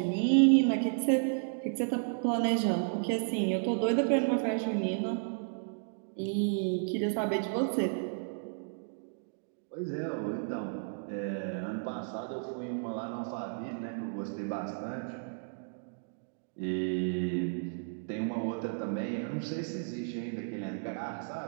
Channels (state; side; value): silent; left; digital silence